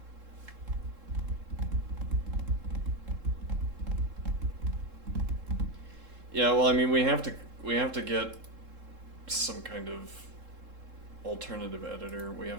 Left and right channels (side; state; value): left; late; 3.7 ms